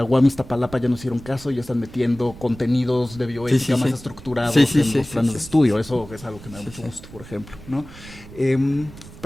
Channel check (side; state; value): right; noise; rumble, 17 dB below the sound